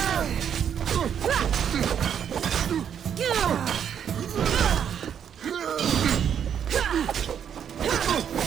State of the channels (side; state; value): left; quieter; 8.5 dB